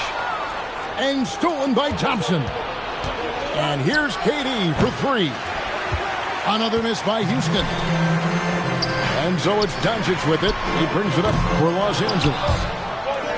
And stolen by Thompson. And here's KD for 3. Another miss by Houston. And so it's Doncic with it. He brings it up for Los Angeles.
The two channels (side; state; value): both; identical; correlation 1.00